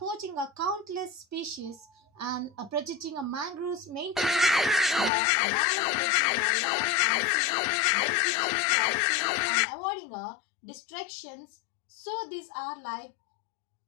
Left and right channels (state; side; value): drops out; right; at 5.1 s